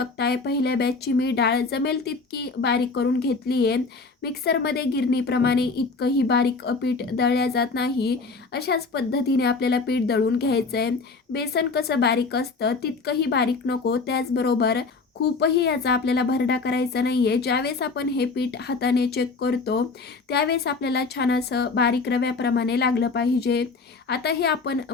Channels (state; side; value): quieter; right; 4.2 dB